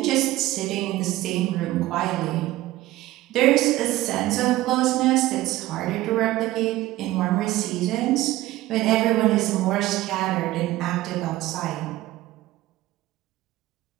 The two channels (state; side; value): quieter; left; 16.7 dB